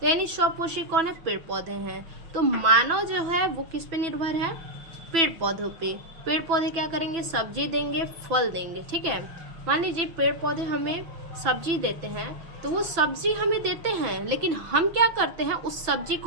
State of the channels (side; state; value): left; late; 6.0 ms